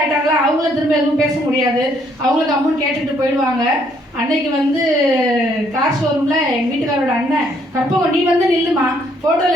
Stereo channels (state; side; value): normal; both; correlation 0.68